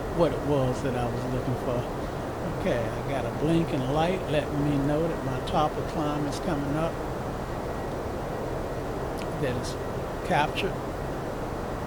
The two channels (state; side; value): identical; both; correlation 1.00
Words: what it was that I was looking for. Okay, I got a blinking light letting me know that my top of climb is coming up. That is captured.